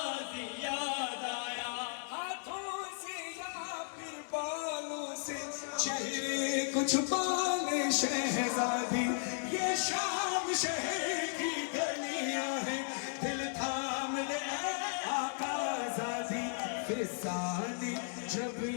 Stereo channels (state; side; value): silent; right; digital silence